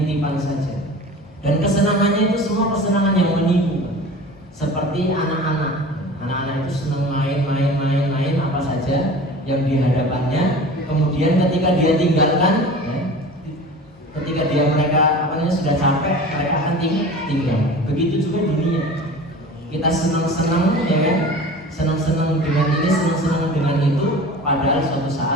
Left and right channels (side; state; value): both; normal; correlation 0.38